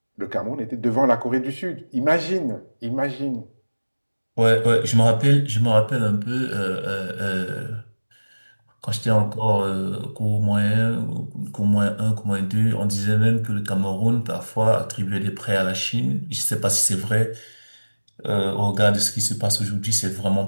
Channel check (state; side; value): inverted; both; correlation -1.00